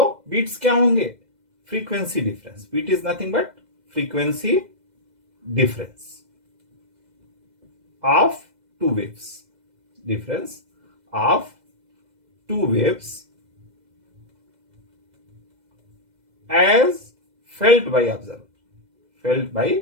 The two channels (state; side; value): late; left; 2.0 ms